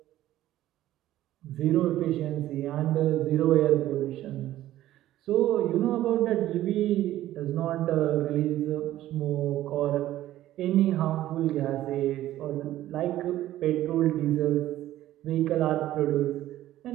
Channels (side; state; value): left; quieter; 14.0 dB